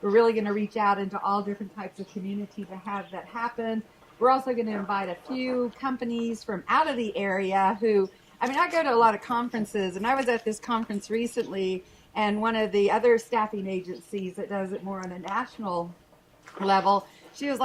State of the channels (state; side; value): identical; both; correlation 1.00